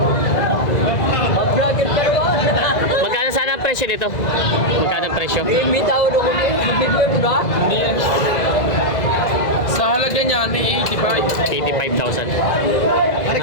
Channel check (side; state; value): right; late; 2.0 ms